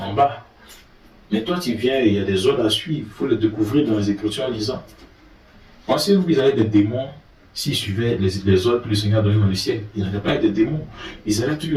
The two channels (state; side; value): identical; both; correlation 1.00